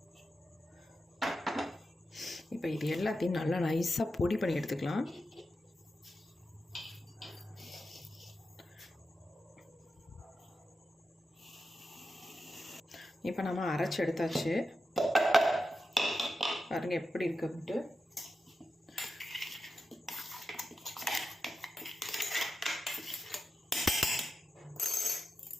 இப்போ இது எல்லாத்தையும் நல்லா நைஸாக பொடி பண்ணி எடுத்துக்கலாம். இப்போ நம்ம அரைச்சி எடுத்தாச்சு. பாருங்க எப்படி இருக்கு அப்படின்ட்டு.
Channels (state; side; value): normal; both; correlation 0.89